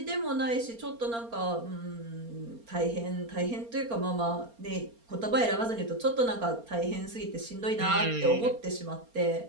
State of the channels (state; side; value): late; left; 4.3 ms